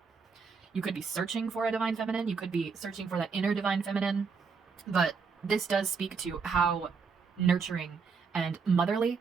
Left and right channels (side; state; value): left; quieter; 5.3 dB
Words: You could be searching for a divine feminine. You could be searching for that inner divine feminine. But this does speak to how nurturing and motherly,